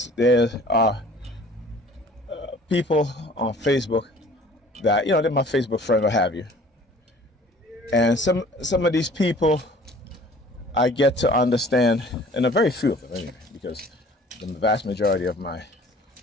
are people on Facebook that, they're my Facebook friend, what have you. And some of these people I get to understand, and a very few of them anyway, because the vast majority of my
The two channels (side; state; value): both; normal; correlation 0.50